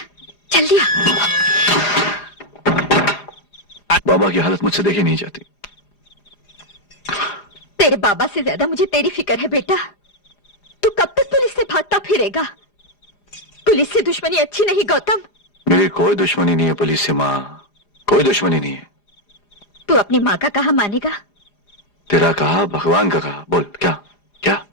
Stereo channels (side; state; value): right; late; 4.9 ms